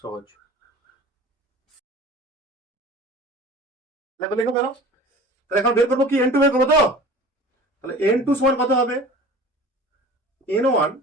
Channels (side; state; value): both; normal; correlation 0.41